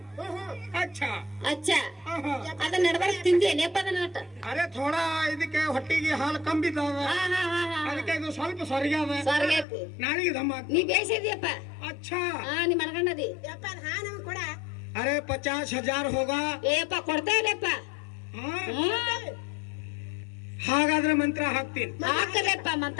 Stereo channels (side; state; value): right; drops out; at 9.7 s